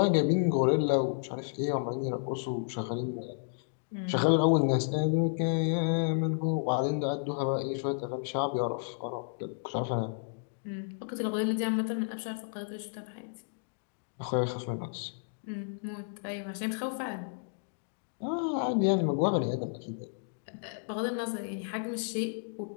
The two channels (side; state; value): right; silent; digital silence